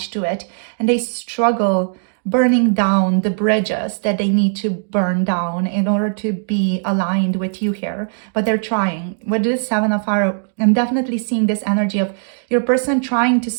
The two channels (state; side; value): silent; left; 67 dB below the other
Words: to it, and they struggle burning down the bridges that they need to burn down in order to be aligned with you here. But they're trying. With this Seven of Fire, I'm definitely seeing this energy of your person trying to